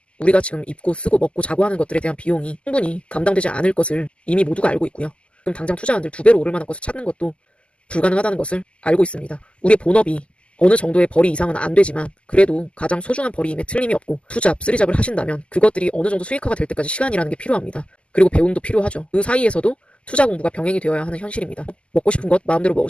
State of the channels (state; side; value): late; right; 0.054 ms